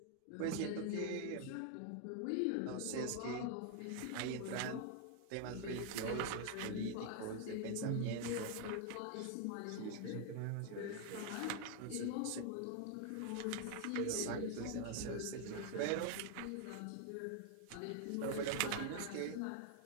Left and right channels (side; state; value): both; different; correlation 0.00